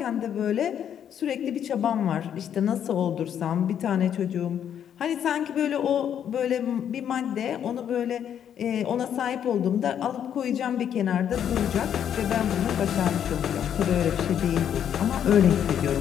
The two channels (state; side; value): quieter; right; 9.2 dB